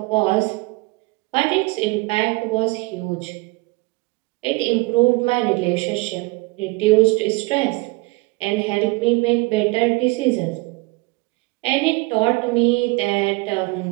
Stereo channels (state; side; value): quieter; left; 24.4 dB